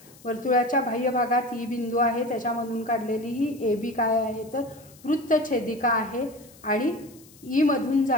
वर्तुळाच्या बाह्य भागात E बिंदू आहे त्याच्यामधून काढलेली ही AB काय आहे तर वृत्तछेदिका आहे आणि E मधून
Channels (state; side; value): noise; left; hiss, 24 dB below the sound